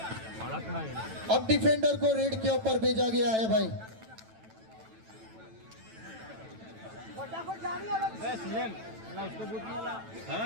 अब डिफेंडर को रेड के ऊपर भेजा गया है भाई।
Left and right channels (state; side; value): late; left; 9.1 ms